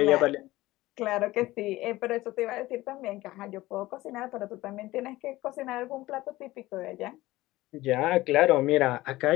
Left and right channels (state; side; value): quieter; right; 18.0 dB